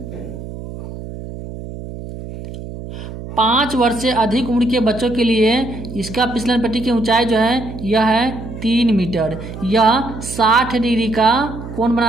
5 वर्ष से अधिक उम्र के बच्चों के लिए इसका फिसलन पट्टी की ऊंचाई जो है यह है 3 मीटर। यह 60 डिग्री का कोण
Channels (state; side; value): noise; right; hum, 11 dB below the sound